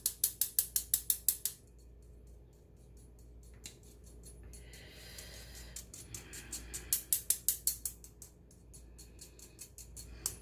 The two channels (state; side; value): identical; both; correlation 1.00